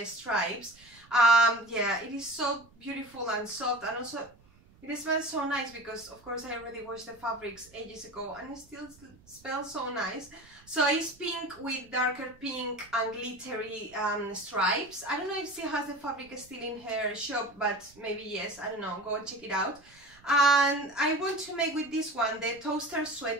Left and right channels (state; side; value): noise; right; rumble, 27 dB below the sound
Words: stripes. Yeah, it is so beautiful and soft, and also it smells so nice because of course I already washed the fabrics ages ago and it still smells so nice. So it's pink with darker pink and glittery stripes. I don't know if she has the fabric still in her shop, but maybe yes, I don't know, go and check it out. And I want to make with this one the toaster